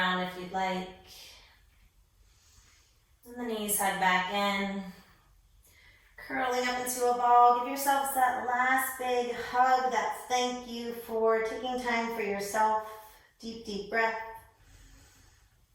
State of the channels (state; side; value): identical; both; correlation 1.00